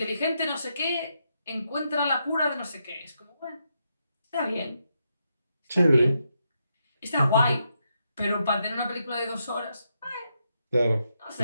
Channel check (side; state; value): both; inverted; correlation -0.82